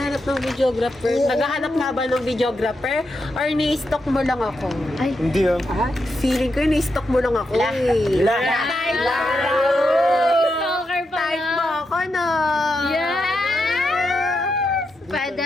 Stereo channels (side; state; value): both; normal; correlation 0.85